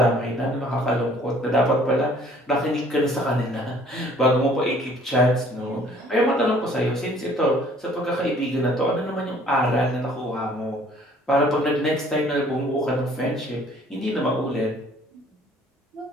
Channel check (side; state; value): both; normal; correlation 0.56